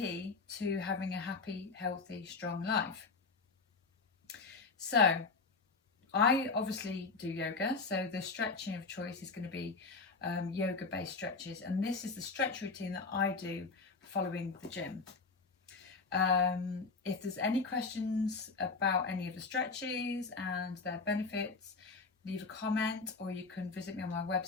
to having a happy, healthy, strong life. So I obviously do yoga, so the stretching of choice is going to be yoga based stretches, and this is the stretch routine that I do following the gym. If there's any questions about any of the stretches and their benefits, leave a comment, or you can visit me on my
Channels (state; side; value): quieter; right; 4.3 dB